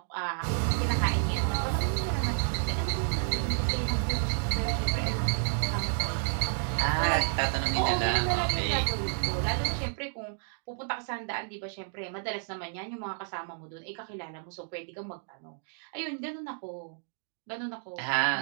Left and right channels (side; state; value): left; silent; 57 dB below the other